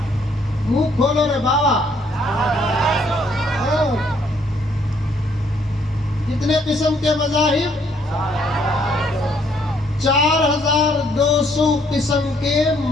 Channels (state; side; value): normal; both; correlation 0.67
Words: منہ کھولو رے بابا، کتنے قسم کے مذاہب؟ 4200 قسم کے